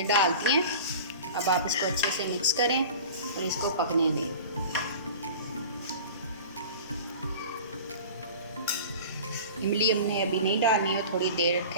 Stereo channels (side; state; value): both; inverted; correlation -0.37